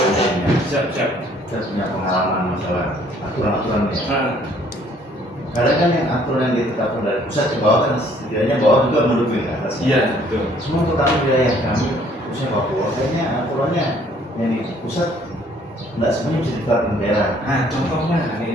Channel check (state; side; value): normal; both; correlation 0.61